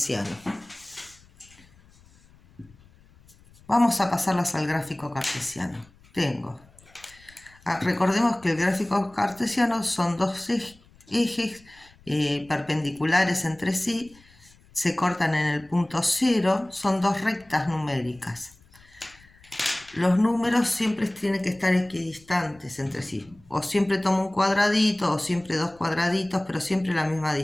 Vamos a pasarlas al gráfico cartesiano. Recordemos que el gráfico cartesiano son dos ejes perpendiculares entre sí, se cortan en el punto 0, son dos rectas numéricas. Los números siempre tienen que estar equidistantes entre sí. O siempre tomo un cuadradito, o siempre dos cuadraditos, pero siempre la misma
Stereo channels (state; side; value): noise; left; rumble, 27 dB below the sound